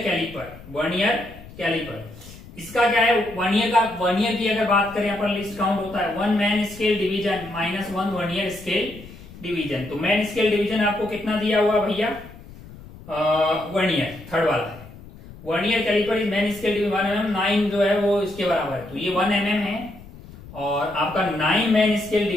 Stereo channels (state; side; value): noise; left; rumble, 18 dB below the sound